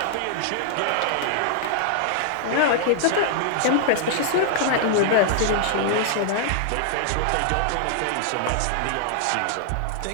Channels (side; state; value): both; different; correlation -0.01